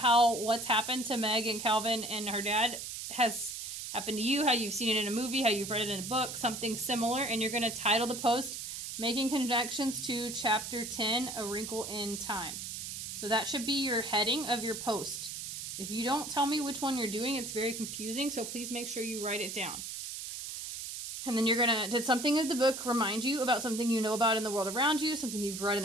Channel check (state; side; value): noise; right; hiss, 7 dB below the sound